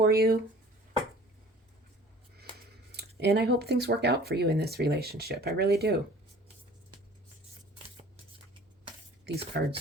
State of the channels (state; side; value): normal; both; correlation 0.48